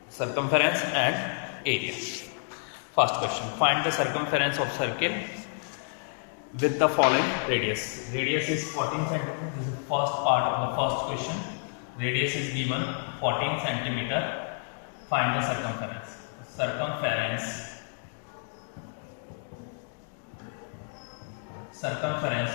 circumference and area. First question, find the circumference of circle with the following radius. Radius is 14 cm. This is the first part of the first question. Radius is given 14 cm. Find the circumference. Circumference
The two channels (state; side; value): silent; right; 58 dB below the other